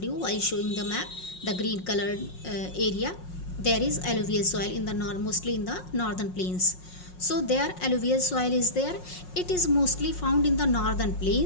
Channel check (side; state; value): right; late; 5.5 ms